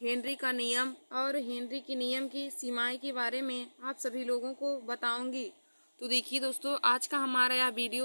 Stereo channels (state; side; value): inverted; both; correlation -1.00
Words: का नियम और हेनरी के नियम की सीमाएँ के बारे में आप सभी लोगों को बताऊंगी। तो देखिए दोस्तों, आज का हमारा यह